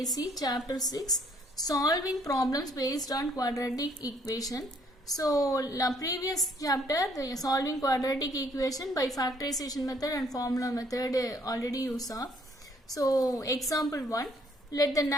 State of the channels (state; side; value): normal; both; correlation 0.64